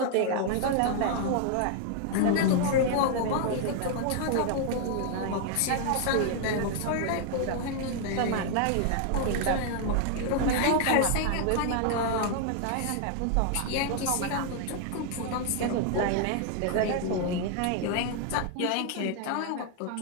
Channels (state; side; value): different; both; correlation 0.00